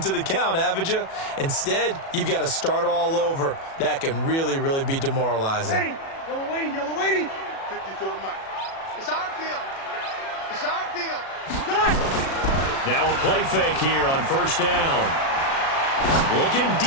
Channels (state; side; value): late; right; 37 ms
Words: the count, haven't you? Instead, you've got to start all over. That can really, really be demoralizing. Yellow waiting. 54 Mike. It's our field. It's our field. Now a play fake here on 1st down. Looking